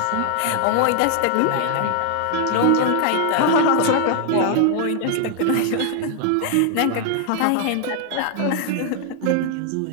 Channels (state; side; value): different; both; correlation 0.00